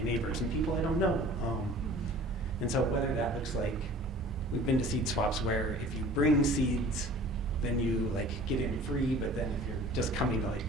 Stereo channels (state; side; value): normal; both; correlation 0.46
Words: neighbors and people I don't know. And so whether that looks like, we've been to seed swaps where if you bring seeds, then you like get in free, but then if you're just coming to like